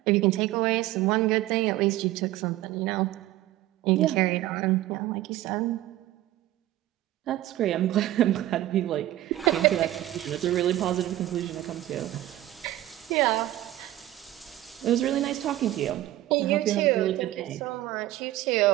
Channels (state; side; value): quieter; left; 14.9 dB